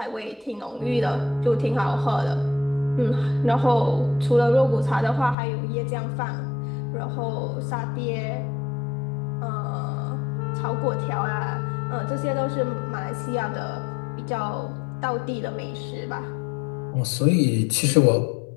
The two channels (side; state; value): right; drops out; at 5.4 s